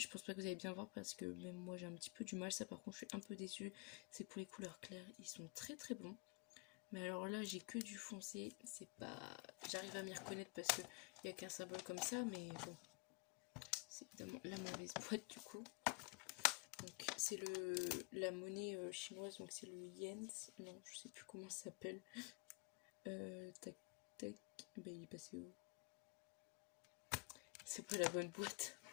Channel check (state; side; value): quieter; right; 30.7 dB